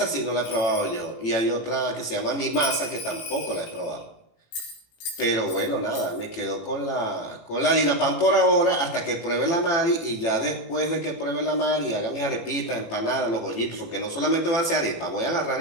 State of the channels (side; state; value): right; late; 18 ms